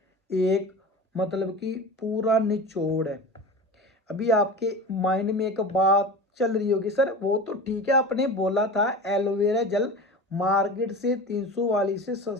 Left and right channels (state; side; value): normal; both; correlation 0.32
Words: एक मतलब कि पूरा निचोड़ है। अभी आपके माइंड में एक बात चल रही होगी, सर वो तो ठीक है, आपने बोला था एलोवेरा जेल मार्केट से 300 वाली से